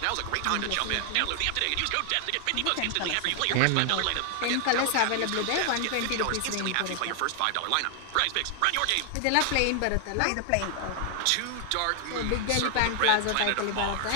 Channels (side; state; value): both; different; correlation 0.00